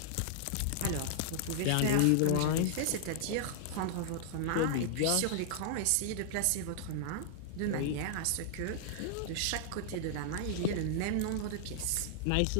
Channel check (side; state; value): both; different; correlation -0.01